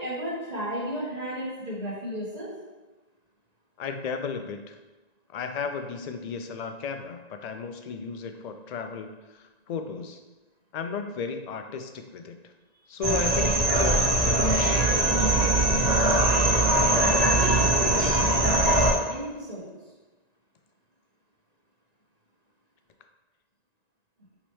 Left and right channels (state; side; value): late; right; 1.9 ms